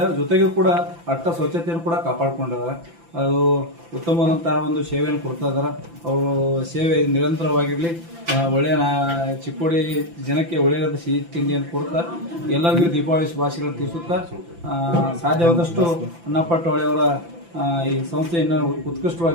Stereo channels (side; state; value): left; late; 5.9 ms